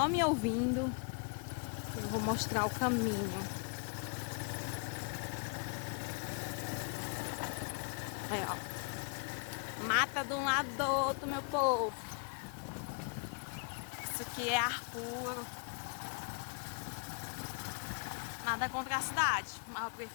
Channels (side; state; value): right; quieter; 34.8 dB